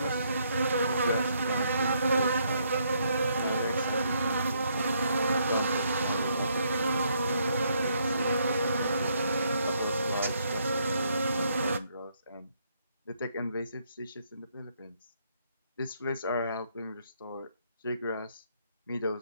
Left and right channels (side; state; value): both; inverted; correlation -0.72